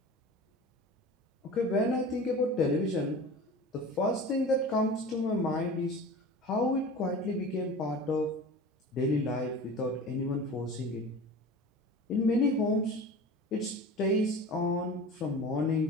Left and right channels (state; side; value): normal; both; correlation 0.36